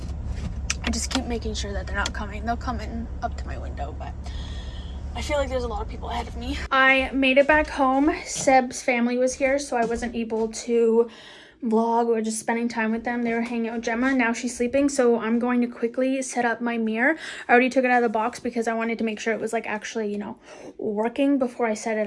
I just keep making sure that they're not coming. They'll come in up to my window, but I feel like there's a lot of people ahead of me. I made it back home. Seb's family was here, so I wasn't able to vlog or just spending time with them. They were hanging out with Gemma. Now she's sleeping, so I'm going to quickly set up my mirror. I already took it out of the box because I wanted to make sure it was like actually, you know, working before I set it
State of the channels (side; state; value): both; identical; correlation 1.00